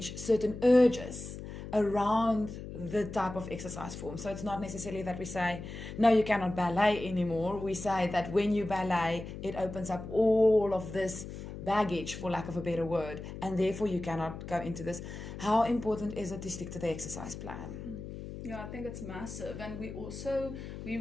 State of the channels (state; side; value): noise; left; hum, 10 dB below the sound